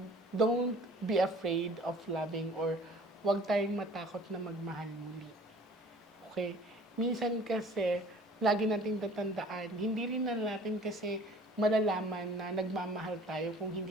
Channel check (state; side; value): normal; both; correlation 0.49